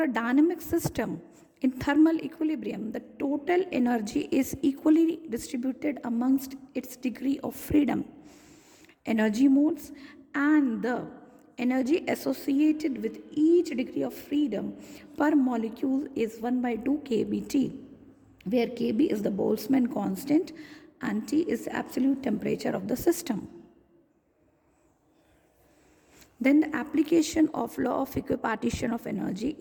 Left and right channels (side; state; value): both; identical; correlation 1.00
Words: a dynamic system in thermal equilibrium, the total energy is equally distributed amongst its degree of freedom, energy modes, and the energy associated with each degree of freedom per molecule is 1 by 2 kBT, where Kb is the Boltzmann constant and T is the absolute temperature of the system. Then the application of law of equipartition of energy